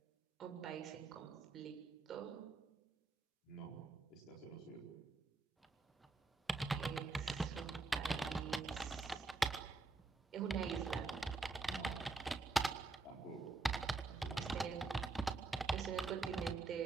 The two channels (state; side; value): quieter; left; 3.8 dB